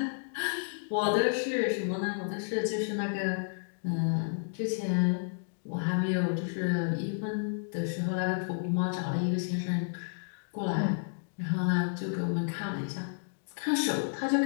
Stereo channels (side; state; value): right; silent; digital silence